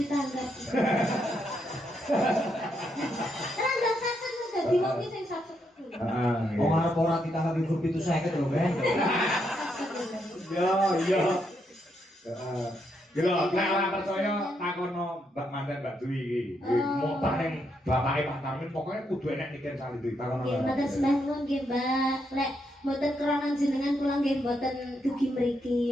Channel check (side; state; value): both; normal; correlation 0.78